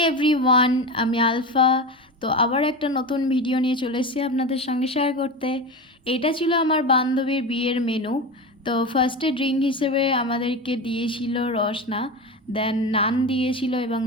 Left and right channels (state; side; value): normal; both; correlation 0.24